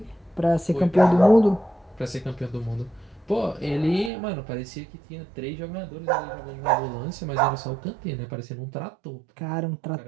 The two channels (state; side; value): drops out; left; at 4.1 s